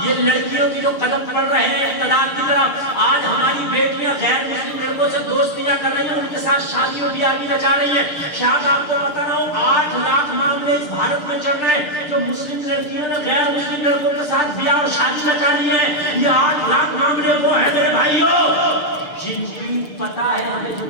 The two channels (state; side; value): late; right; 6.7 ms